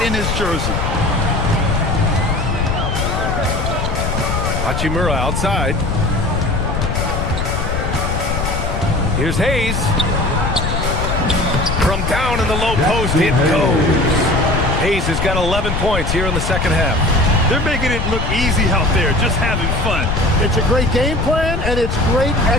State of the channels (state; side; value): noise; left; rumble, 2 dB below the sound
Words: in his jersey. Hachimura outside. Here's Hayes. From down in the low post, it goes. Hayes has got 11 points here in the second half. They're making it look easy out there, just having fun. It's a great game plan, and it's great